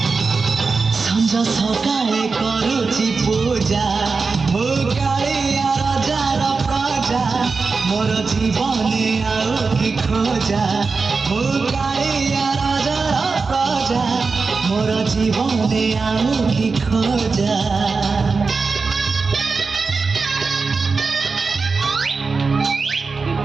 সঞ্জ সকালে করুছি পূজা মু কালিয়া রাজার প্রজা মোর জীবনে আও কি খোঁজা মু কালিয়া রাজার প্রজা মোর জীবনে আও কি খোঁজা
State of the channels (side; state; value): left; quieter; 4.5 dB